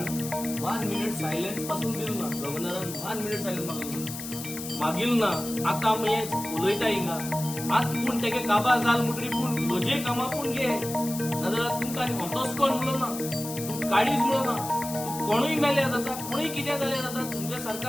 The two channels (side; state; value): left; noise; hiss, 9 dB below the sound